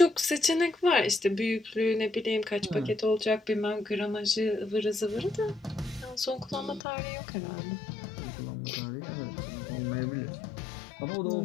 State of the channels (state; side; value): drops out; right; at 6.8 s